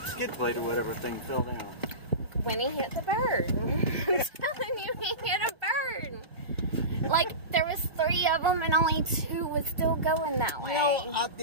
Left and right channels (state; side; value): late; left; 1.6 ms